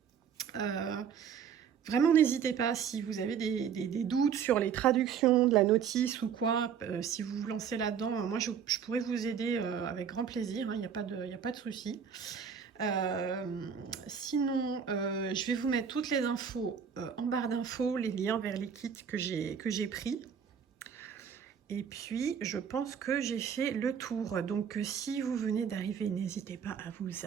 Vraiment, n'hésitez pas si vous avez des doutes sur les traductions de la notice ou quoi, si vous vous lancez là-dedans, moi je pourrais vous aider avec grand plaisir, il n'y a pas de souci. Sinon, je vais vous mettre toutes les infos en barre d'infos, les liens vers les kits que j'ai pris. Et puis, je pense que j'ai fait le tour. Donc, si vous venez d'arriver, n'hésitez pas à vous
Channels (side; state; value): left; quieter; 7.4 dB